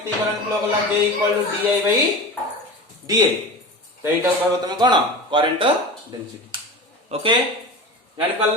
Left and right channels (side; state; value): both; normal; correlation 0.31